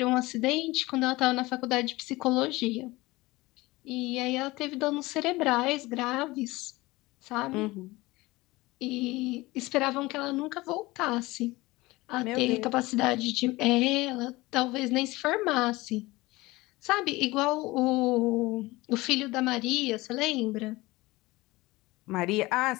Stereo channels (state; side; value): quieter; right; 20.6 dB